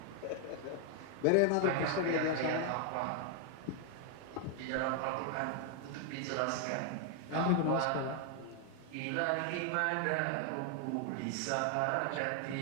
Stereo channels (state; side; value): different; both; correlation 0.00